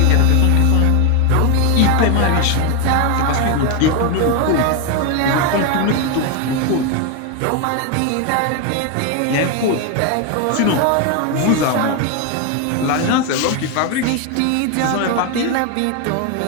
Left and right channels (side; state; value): both; different; correlation 0.01